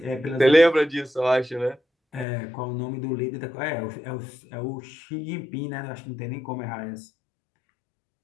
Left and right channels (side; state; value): right; drops out; at 2.2 s